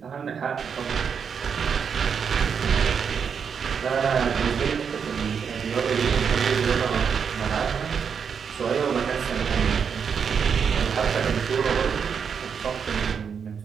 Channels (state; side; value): quieter; left; 6.7 dB